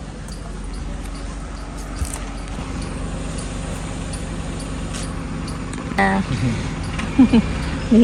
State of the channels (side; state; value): both; identical; correlation 1.00